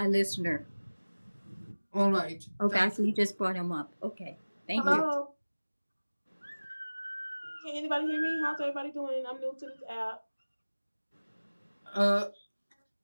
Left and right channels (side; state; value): both; inverted; correlation -1.00